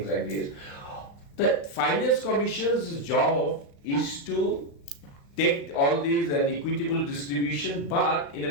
like this. The Finance Commission's job is to take all these and equitable distribution, but in a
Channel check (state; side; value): late; right; 35 ms